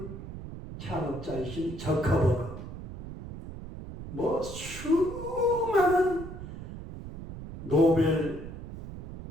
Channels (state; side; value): noise; right; rumble, 11 dB below the sound